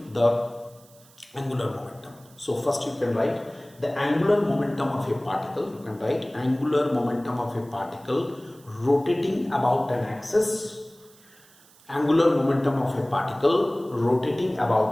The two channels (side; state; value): right; noise; hiss, 27 dB below the sound